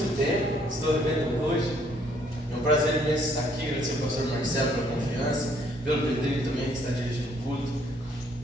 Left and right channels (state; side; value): normal; both; correlation 0.65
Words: tempo, estou revendo hoje. É um prazer imenso estar aqui, agradecer ao pastor Marcelo pela confiança, pelo Pedrinho também que está dirigindo o culto.